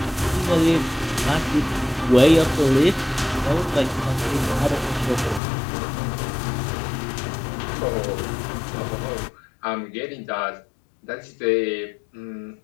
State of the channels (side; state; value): right; drops out; at 5.4 s